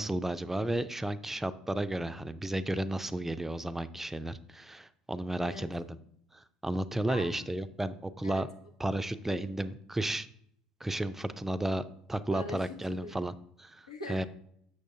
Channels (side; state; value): both; normal; correlation 0.91